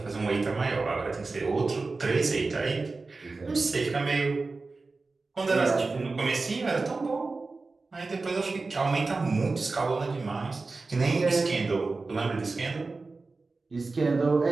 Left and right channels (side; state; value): left; quieter; 3.8 dB